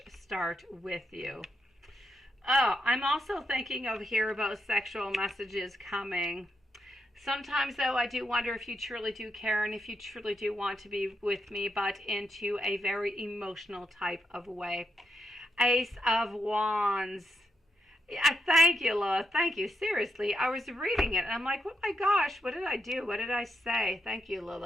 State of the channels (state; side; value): normal; both; correlation 0.82